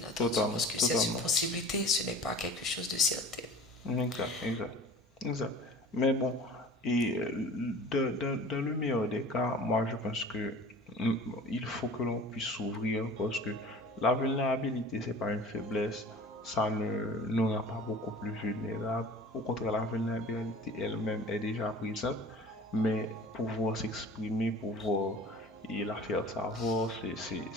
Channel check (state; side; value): normal; both; correlation 0.43